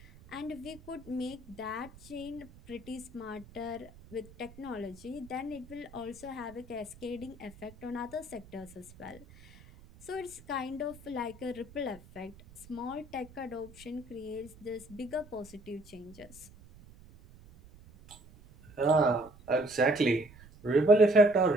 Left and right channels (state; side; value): noise; right; rumble, 21 dB below the sound